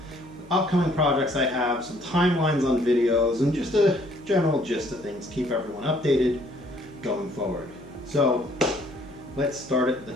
upcoming projects I have, some timelines on videos, and just a general gist of things. Keep everyone updated going forward. So let's start at the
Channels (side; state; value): left; noise; hum, 23 dB below the sound